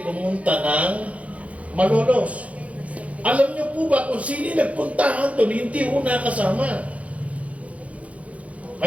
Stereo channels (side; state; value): left; late; 0.065 ms